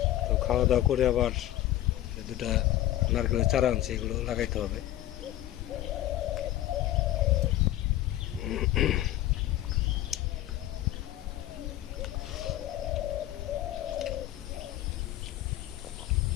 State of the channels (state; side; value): quieter; right; 14.1 dB